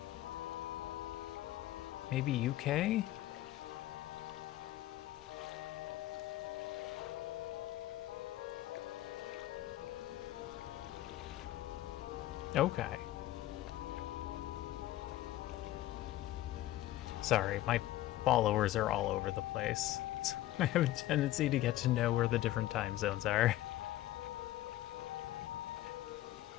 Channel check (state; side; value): quieter; right; 14.9 dB